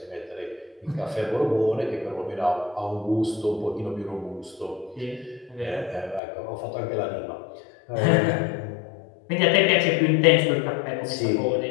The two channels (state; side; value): drops out; right; at 6.2 s